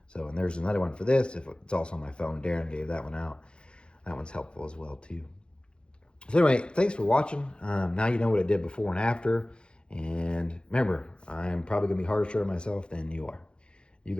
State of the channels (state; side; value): late; right; 0.053 ms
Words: So, and there's another one for this. If it's also on my phone, Darren gave that one out. That one's helpful as well too. So anyway, thanks for watching. Now you know what it did before and after. And remember, I'm probably gonna be harsher on myself than you are. You